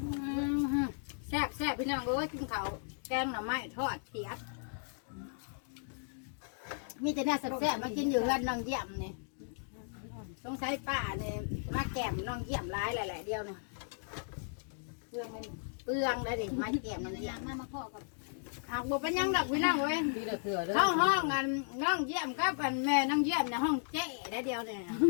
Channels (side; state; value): right; silent; digital silence